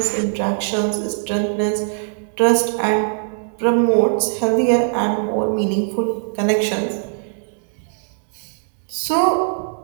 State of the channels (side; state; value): left; silent; digital silence